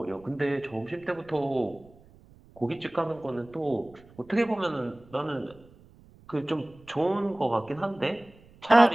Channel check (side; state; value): right; noise; rumble, 25 dB below the sound